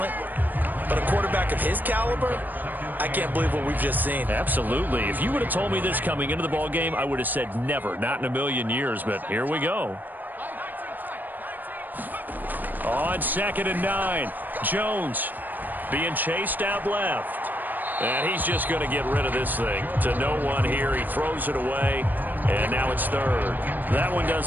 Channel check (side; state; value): left; late; 0.088 ms